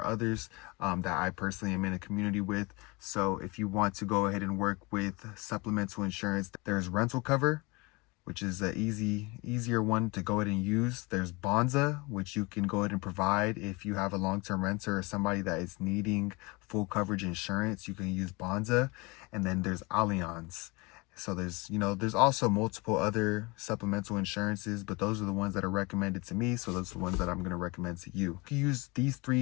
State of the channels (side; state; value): right; quieter; 25.9 dB